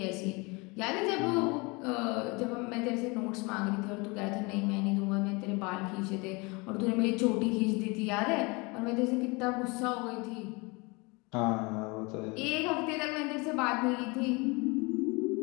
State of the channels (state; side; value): quieter; right; 27.4 dB